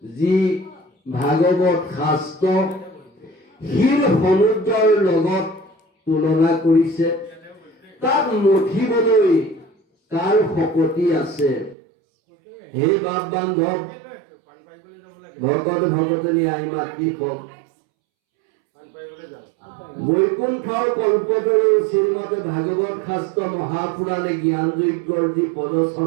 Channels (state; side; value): drops out; left; at 11.8 s